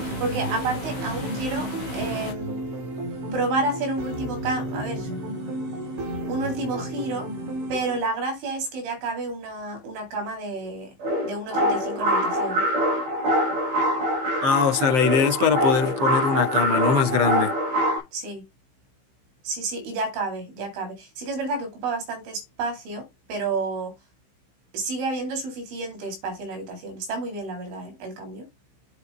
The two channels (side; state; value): left; late; 15 ms